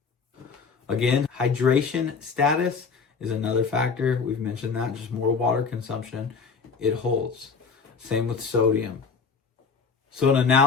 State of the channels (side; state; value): right; quieter; 5.2 dB